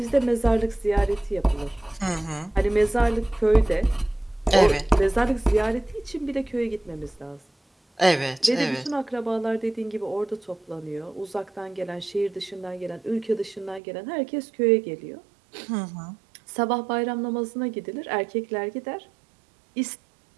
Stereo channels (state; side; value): drops out; left; at 13.8 s